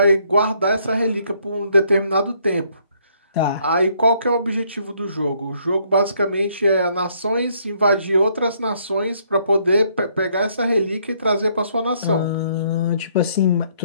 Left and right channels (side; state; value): both; inverted; correlation -0.68